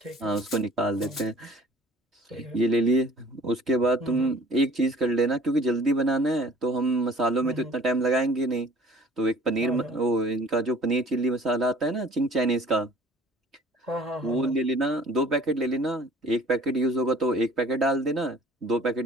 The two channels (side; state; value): both; normal; correlation 0.50